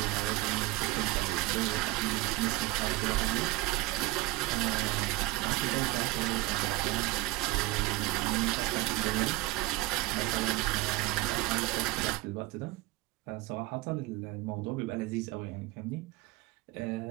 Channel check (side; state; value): left; quieter; 18.9 dB